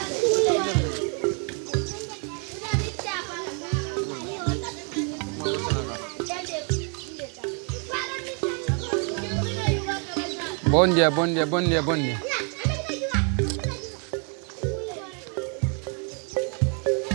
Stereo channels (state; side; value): quieter; left; 38.8 dB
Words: Bom dia, bom dia, bom dia, bom dia.